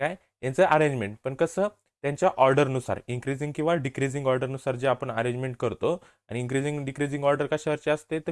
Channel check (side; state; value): both; identical; correlation 1.00